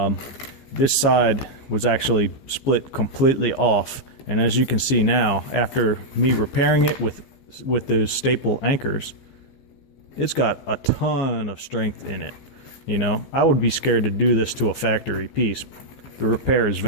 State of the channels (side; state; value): right; late; 15 ms